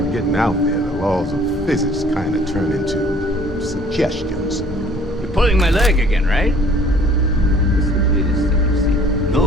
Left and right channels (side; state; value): both; normal; correlation 0.55